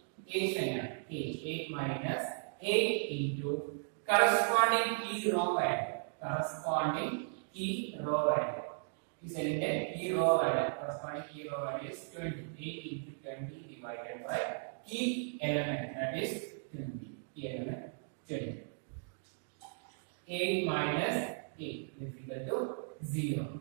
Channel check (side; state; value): left; silent; digital silence